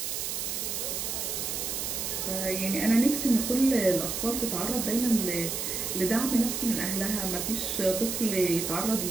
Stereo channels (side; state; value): right; noise; hiss, 2 dB below the sound